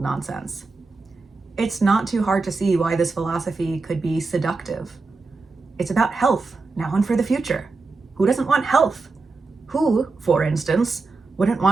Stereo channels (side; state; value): left; quieter; 3.9 dB